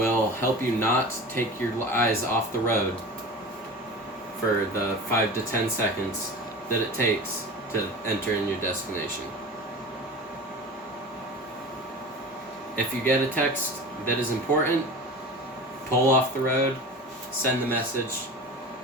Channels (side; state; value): both; normal; correlation 0.33